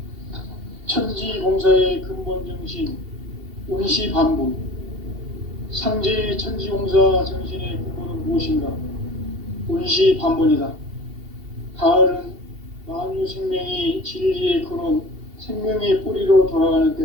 천지공사의 근본 정신 운시반복. 상제의 천지공사 정신의 근본은 무엇인가? 운시반복이다. 가을은 만유 생명이 진리의 근원, 생명의 뿌리로 돌아가는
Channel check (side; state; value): left; late; 2.7 ms